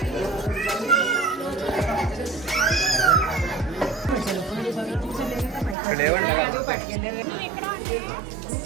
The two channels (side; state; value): left; drops out; at 5.8 s